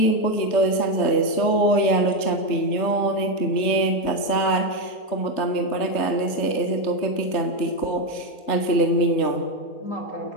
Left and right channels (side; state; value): right; late; 3.4 ms